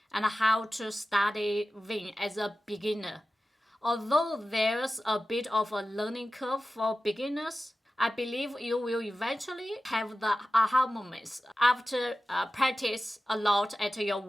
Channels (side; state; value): both; normal; correlation 0.94